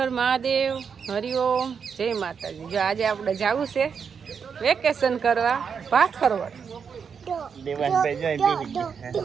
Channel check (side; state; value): left; quieter; 6.5 dB